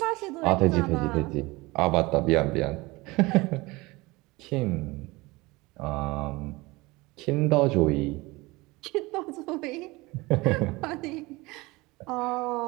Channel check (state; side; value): quieter; left; 22.6 dB